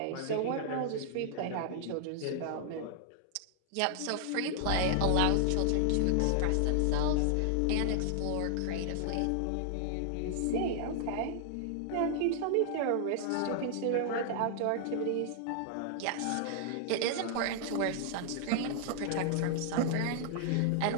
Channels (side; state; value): both; different; correlation 0.00